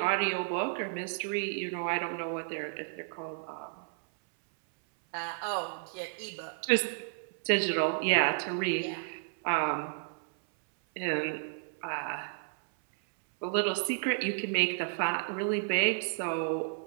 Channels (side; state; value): left; silent; 56 dB below the other